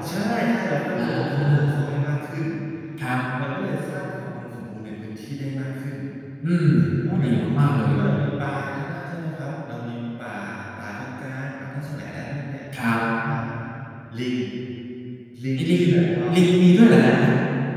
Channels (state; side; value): identical; both; correlation 1.00